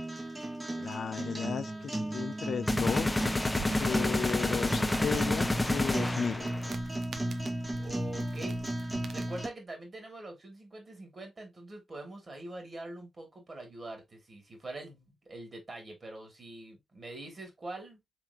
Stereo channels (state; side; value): normal; both; correlation 0.93